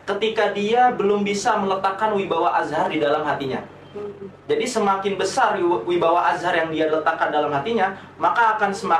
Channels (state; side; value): identical; both; correlation 1.00